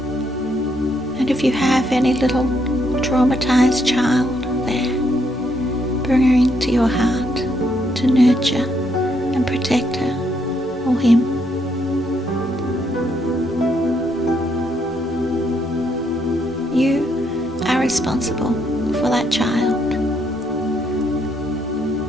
And if you have any little traumatized child there, bring her into your heart to nurture and protect her or him. You are responsible for that child.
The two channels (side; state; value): both; normal; correlation 0.74